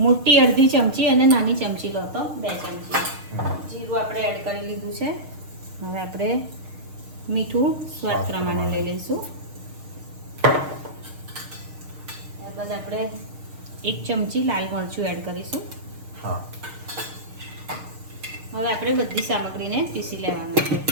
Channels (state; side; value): late; left; 6.5 ms